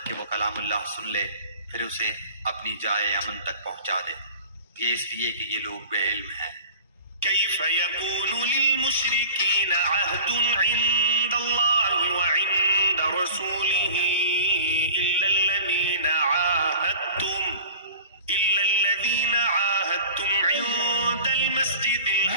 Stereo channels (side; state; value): both; inverted; correlation -0.40